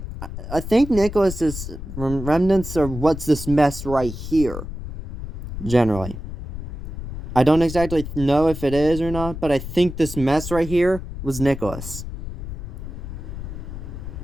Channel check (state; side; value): noise; left; rumble, 8 dB below the sound